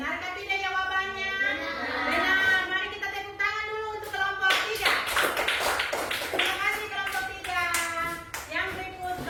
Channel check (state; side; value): identical; both; correlation 1.00